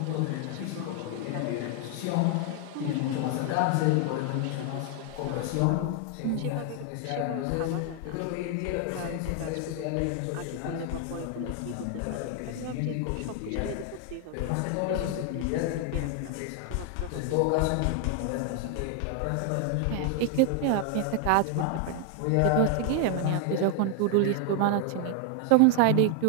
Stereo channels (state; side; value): different; both; correlation 0.00